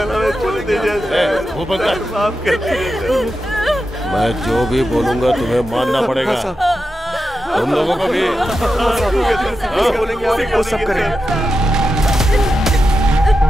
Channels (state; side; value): normal; both; correlation 0.89